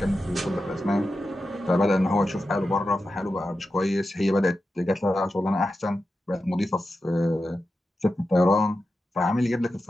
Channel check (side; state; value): both; normal; correlation 0.91